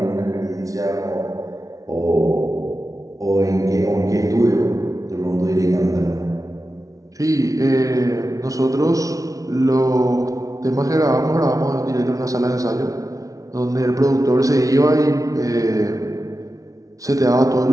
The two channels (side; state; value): left; late; 0.17 ms